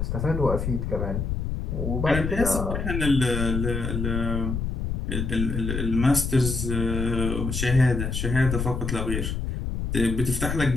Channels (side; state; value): left; noise; rumble, 2 dB below the sound